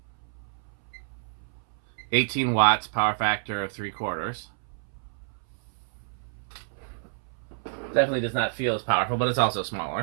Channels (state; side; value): silent; left; 59 dB below the other